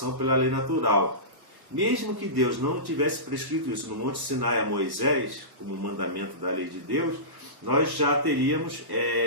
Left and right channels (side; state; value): left; late; 1.1 ms